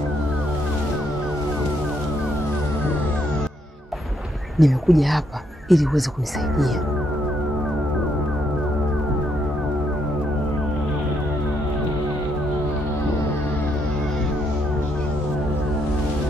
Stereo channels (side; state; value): both; normal; correlation 0.75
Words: Nimekuja hapa ili uweze kunisaidia.